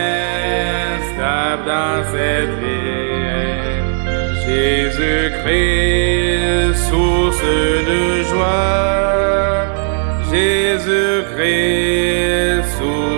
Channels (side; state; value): left; silent; digital silence